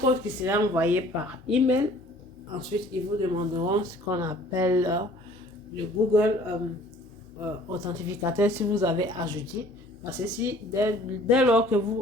qui sera envoyé par email. Ensuite, ils vous demanderont ce qu'on appelle le Google authentificateur si vous avez ajouté. Parce que si dès lors que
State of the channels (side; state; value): both; normal; correlation 0.53